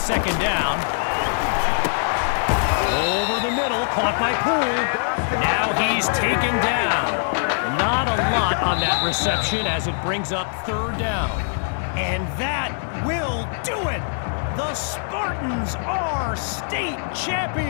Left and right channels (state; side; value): silent; right; digital silence